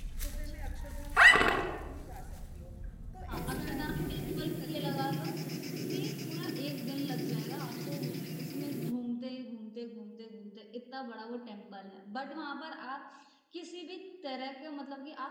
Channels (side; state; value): both; identical; correlation 1.00